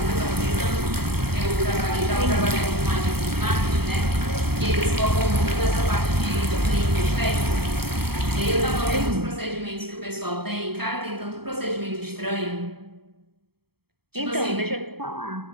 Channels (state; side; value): late; left; 0.96 ms